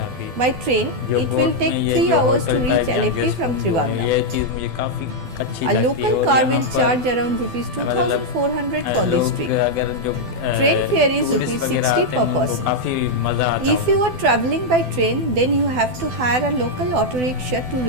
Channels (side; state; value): left; late; 12 ms